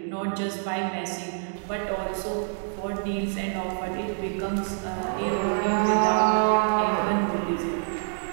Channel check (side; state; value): left; silent; digital silence